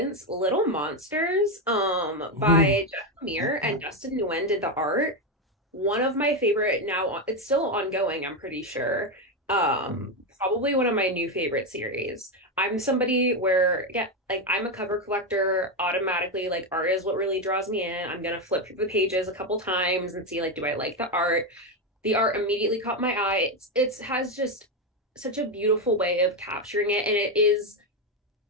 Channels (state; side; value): normal; both; correlation 0.09